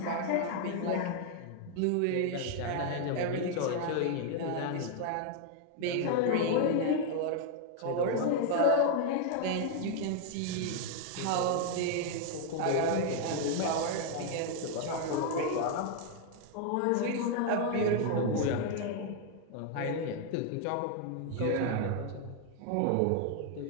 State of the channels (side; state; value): both; different; correlation 0.00